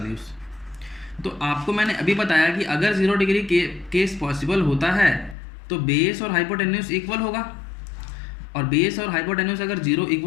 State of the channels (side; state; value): right; drops out; at 5.4 s